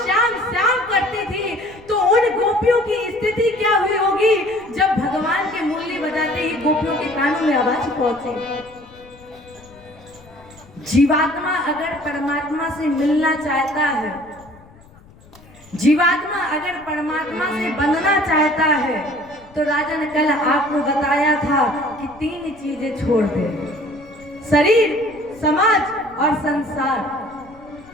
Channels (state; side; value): noise; left; rumble, 25 dB below the sound